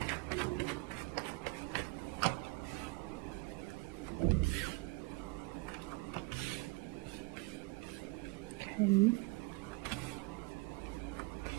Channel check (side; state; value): left; quieter; 23.6 dB